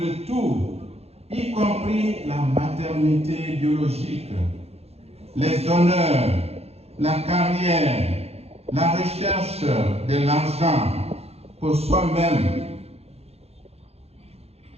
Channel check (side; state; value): left; late; 0.30 ms